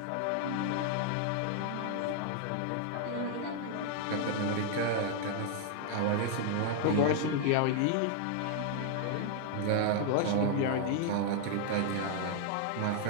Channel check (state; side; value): different; both; correlation 0.00